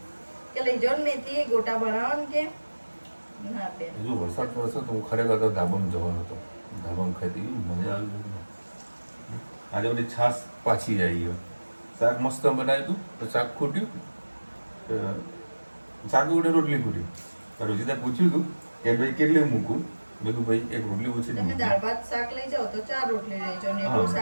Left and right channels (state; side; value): inverted; both; correlation -1.00